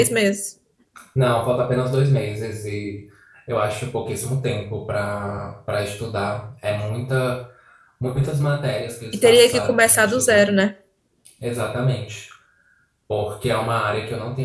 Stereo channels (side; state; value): both; identical; correlation 1.00